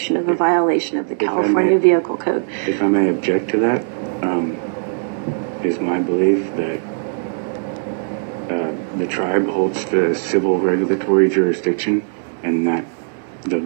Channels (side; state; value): left; silent; digital silence